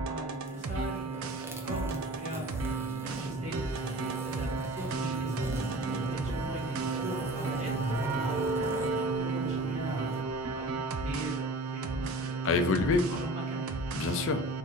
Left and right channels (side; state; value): both; normal; correlation 0.40